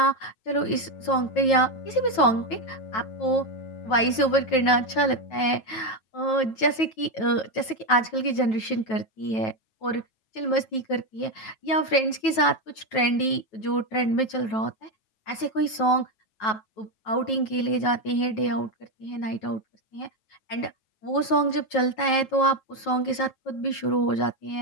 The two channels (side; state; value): right; late; 9.2 ms